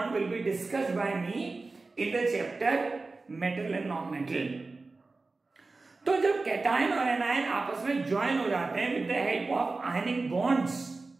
will be discussed by me in the chapter metal and non-metal. तो जब cation और anion आपस में join हो जाते हैं with the help of ionic bonds,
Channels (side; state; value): left; quieter; 3.6 dB